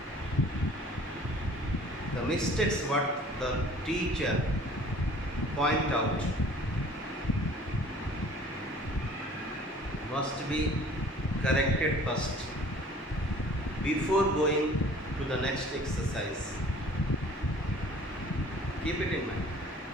the mistakes what the teacher point out must be corrected first before going to the next exercise. Keep it in mind.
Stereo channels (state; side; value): normal; both; correlation 0.50